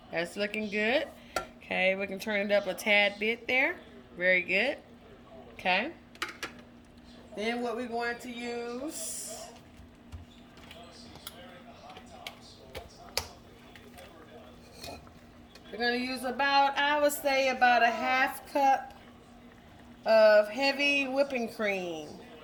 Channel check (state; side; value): identical; both; correlation 1.00